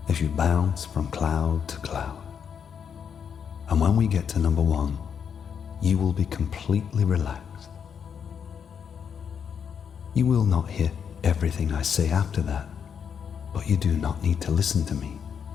as you bounce from cloud to cloud. And when we get to number 1, you will be completely relaxed. You will not hear everything I say after that, but you do not need to listen to me.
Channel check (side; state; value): right; quieter; 7.3 dB